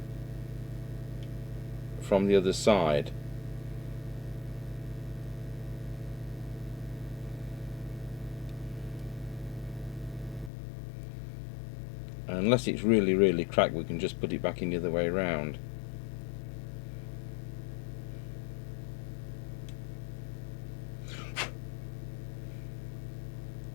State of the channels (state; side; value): drops out; right; at 10.5 s